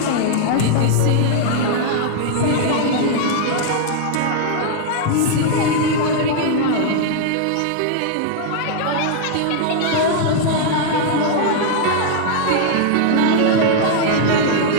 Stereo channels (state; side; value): different; both; correlation -0.01